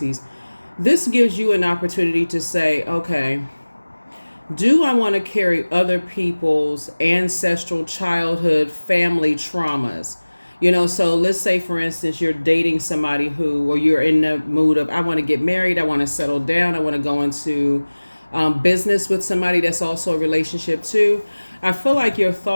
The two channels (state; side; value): inverted; both; correlation -1.00